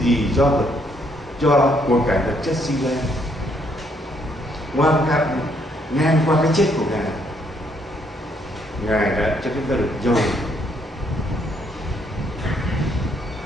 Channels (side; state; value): both; normal; correlation 0.70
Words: gì do của cải vật chất sinh ra, ngang qua cái chết của Ngài đã cho chúng ta được